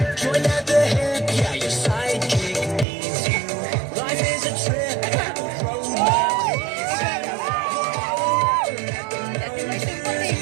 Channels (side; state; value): left; drops out; at 2.9 s